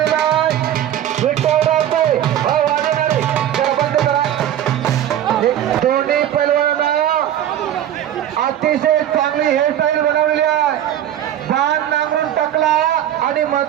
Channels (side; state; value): left; quieter; 11.2 dB